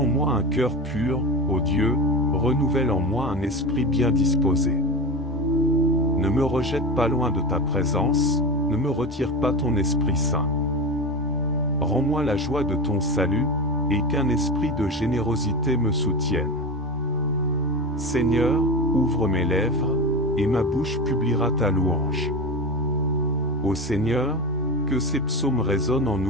moi un cœur pur, ô Dieu, renouvelle en moi un esprit bien disposé. Ne me rejette pas loin de ta présence, ne me retire pas ton Esprit Saint. Rends-moi la joie de ton salut, et qu'un esprit de générosité me soutienne. Seigneur, ouvre mes lèvres, et ma bouche publiera ta louange. Ô Seigneur, que ces psaumes résonnent en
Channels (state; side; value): normal; both; correlation 0.23